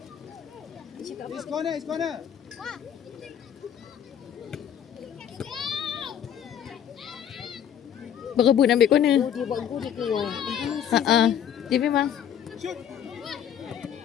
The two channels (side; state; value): right; quieter; 9.3 dB